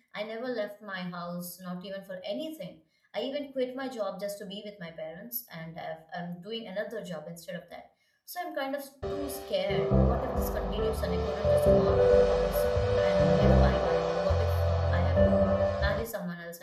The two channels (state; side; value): identical; both; correlation 1.00